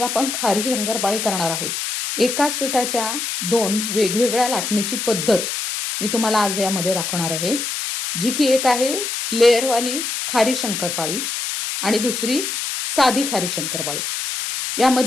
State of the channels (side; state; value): left; noise; hiss, 3 dB below the sound